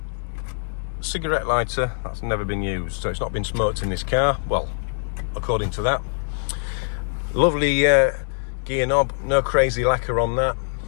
cigarette lighter that's never been used, so it's not been smoked in this car, well, according to that. Lovely gear knob, no crazy lacquer on that,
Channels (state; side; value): silent; right; digital silence